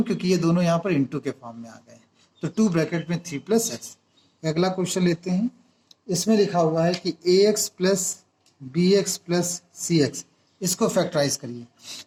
क्योंकि ये दोनों यहाँ पर इंटू के फॉर्म में आ गए। तो 2 ब्रैकेट में 3 + x। अगला क्वेश्चन लेते हैं। इसमें लिखा हुआ है कि ax + bx + cx, इसको फैक्टराइज करिए।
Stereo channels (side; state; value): both; identical; correlation 1.00